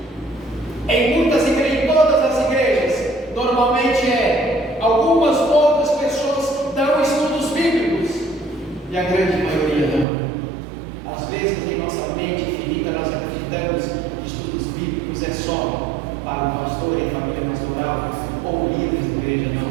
Em muitas igrejas, em todas as igrejas, normalmente algumas poucas pessoas dão estudos bíblicos e a grande maioria não. Às vezes em nossa mente finita nós acreditamos que estudos bíblicos é só para o pastor e a família pastoral ou líderes da igreja.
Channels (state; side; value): drops out; left; at 10.1 s